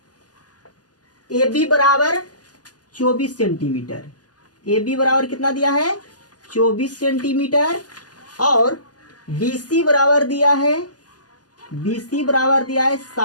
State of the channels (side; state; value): right; late; 0.69 ms